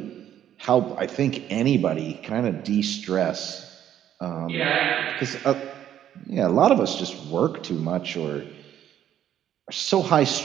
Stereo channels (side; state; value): left; quieter; 10.8 dB